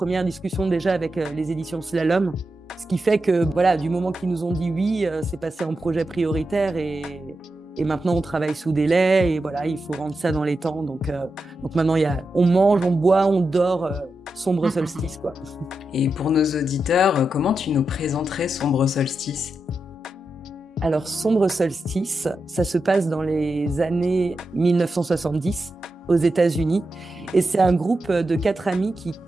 discussions déjà avec les éditions Slalom. Ce qui fait que, voilà, du moment qu'ils nous ont dit oui, c'est passé en projet prioritaire et maintenant, on travaille sous délai et voilà, il faut rendre ça dans les temps. Donc maintenant, on mange, on boit, on dort, Sombre Solstice, quoi. Et pour nos auditeurs, comment tu nous présenterais Sombre Solstice ? Alors, Sombre Solstice, ça se passe dans les années 1970 aux États-Unis. Et c'est un groupe de 4 amis qui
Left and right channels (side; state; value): both; normal; correlation 0.88